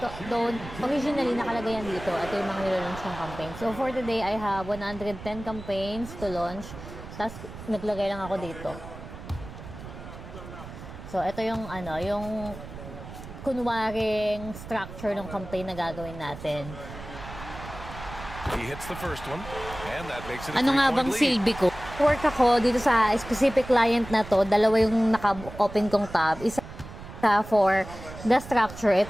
originally nakalagay yan dito. Ito yung mga nilalaunch ng campaign. So, for today, I have 110 campaigns to launch. Tapos, naglagay lang ako dito. So, ito yung, yung kunwaring structure ng campaign na gagawin natin. He hits the first one, and that makes it a Ano nga bang silbi ko? Work ako dito sa specific client na to. Dalawa yung naka-open kong tab. Isa for the structure. Ito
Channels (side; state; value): right; noise; rumble, 13 dB below the sound